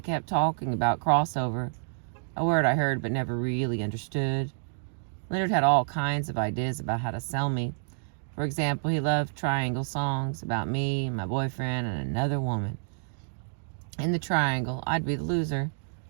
kept talking about crossover, a word I heard but never really understood. Leonard had all kinds of ideas about how to sell me. For example, he loved triangle songs about me, my boyfriend, and another woman. In the triangle, I'd be the loser.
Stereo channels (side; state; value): left; silent; digital silence